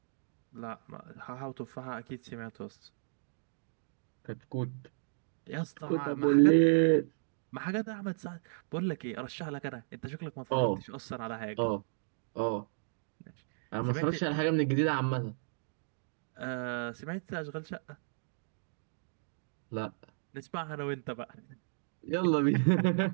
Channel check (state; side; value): silent; left; digital silence